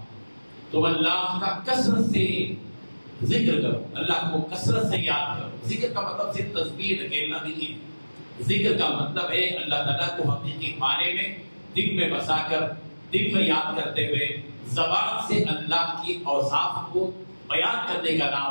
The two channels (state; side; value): inverted; both; correlation -1.00